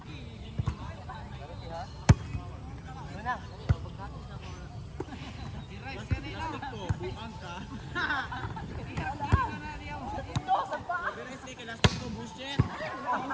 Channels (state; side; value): identical; both; correlation 1.00